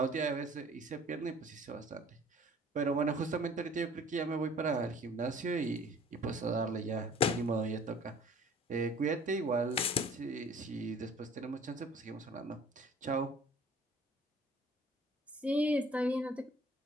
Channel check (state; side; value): normal; both; correlation 0.50